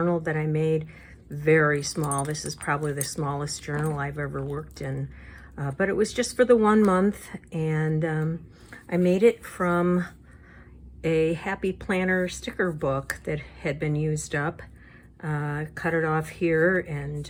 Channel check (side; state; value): both; identical; correlation 1.00